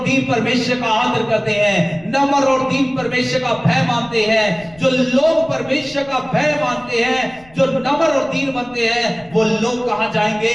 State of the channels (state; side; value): noise; left; rumble, 25 dB below the sound